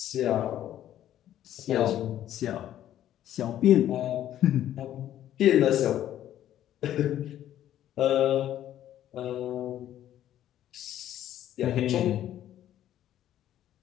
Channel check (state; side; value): quieter; right; 11.9 dB